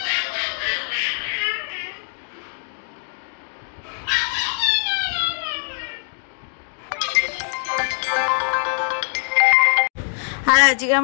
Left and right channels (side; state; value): right; silent; 61 dB below the other